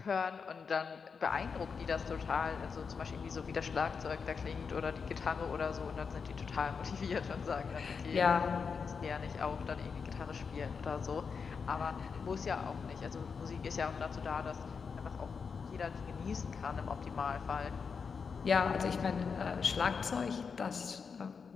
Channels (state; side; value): quieter; right; 5.7 dB